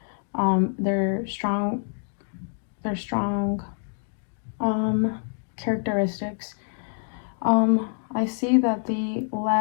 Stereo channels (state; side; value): silent; right; digital silence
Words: their strong characteristics. I see that they